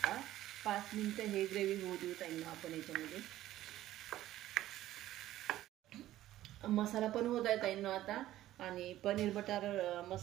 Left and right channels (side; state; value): left; quieter; 14.2 dB